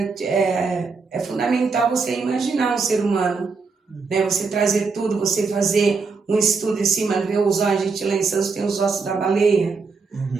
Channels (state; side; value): quieter; left; 4.7 dB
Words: fundamental você imaginar um ser humano, né? Você trazer tudo, você fazer um estudo em cima, ver os ossos, a gente lá em Santos tem os ossos da baleia,